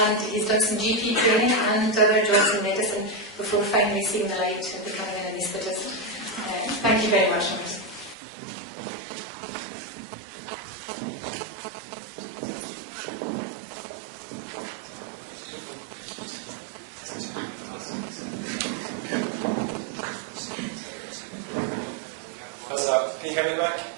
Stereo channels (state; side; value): drops out; left; at 8.2 s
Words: he's done some GP training and other jobs in medicine before finally seeing the light and becoming an anaesthetist. Thank you very much. Can you hear me back?